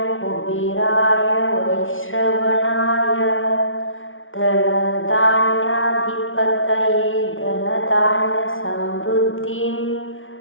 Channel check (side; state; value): right; late; 0.57 ms